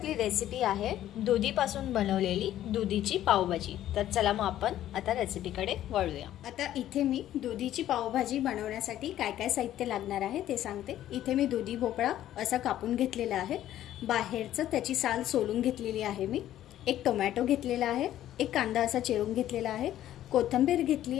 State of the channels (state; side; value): quieter; right; 12.5 dB